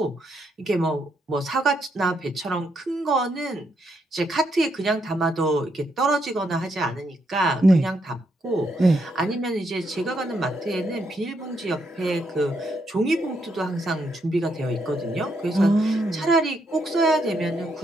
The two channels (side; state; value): both; normal; correlation 0.77